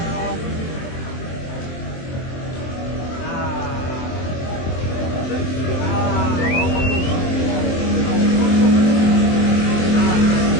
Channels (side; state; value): right; late; 23 ms